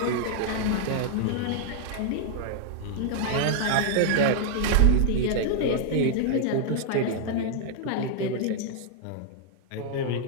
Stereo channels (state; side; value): different; both; correlation 0.00